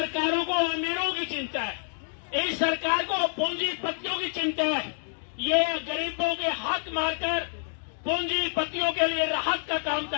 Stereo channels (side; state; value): right; silent; digital silence